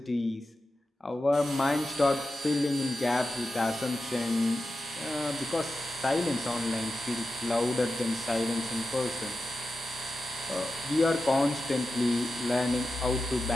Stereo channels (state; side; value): normal; both; correlation 0.91